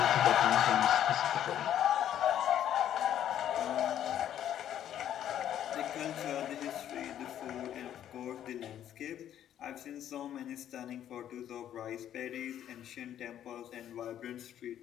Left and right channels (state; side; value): quieter; right; 10.7 dB